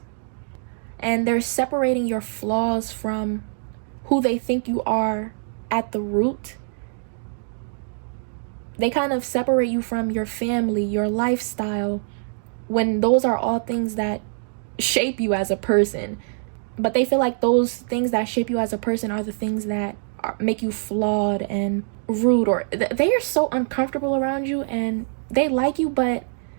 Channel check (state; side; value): silent; left; digital silence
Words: and they're separating your flaws from who they think you are at the root. They kind of separate you from your family, your lifestyle, when those are all things that shape you as a person. But they feel like those things that shape you as a person are the things that make you flawed and rude, or they are so uncomfortable around you, and they like you, but